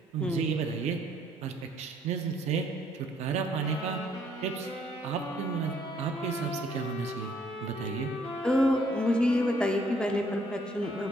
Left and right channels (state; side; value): normal; both; correlation 0.65